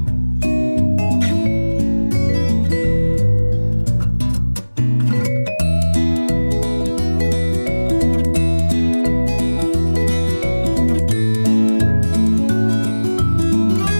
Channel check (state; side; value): inverted; both; correlation -1.00